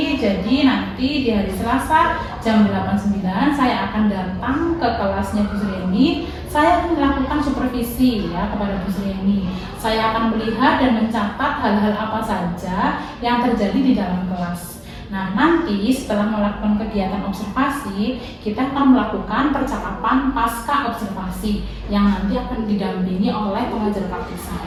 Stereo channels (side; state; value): both; identical; correlation 1.00